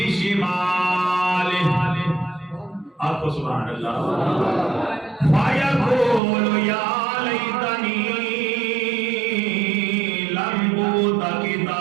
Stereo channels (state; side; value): drops out; left; at 6.2 s